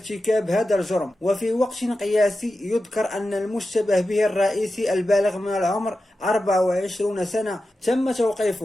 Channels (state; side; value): normal; both; correlation 0.92